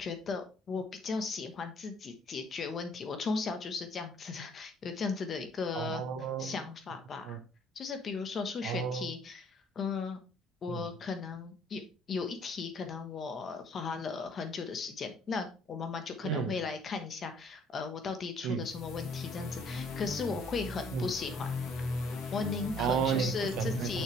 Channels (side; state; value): both; normal; correlation 0.59